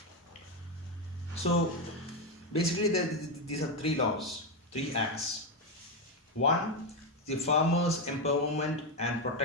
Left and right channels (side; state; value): both; normal; correlation 0.08